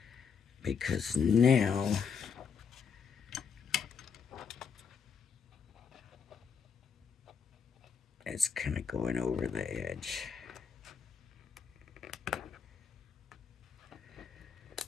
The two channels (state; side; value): quieter; right; 6.4 dB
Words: Because now it's kind of going over the edge.